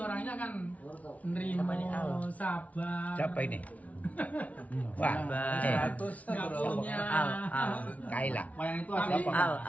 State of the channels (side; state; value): right; late; 0.069 ms